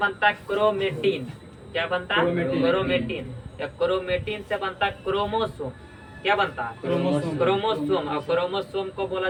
है क्रोमेटिन। क्या बनता है, क्रोमेटिन। या क्रोमेटिन से बनता है क्रोमोसोम। क्या बनता है, क्रोमोसोम। और क्रोमोसोम को बोला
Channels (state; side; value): identical; both; correlation 1.00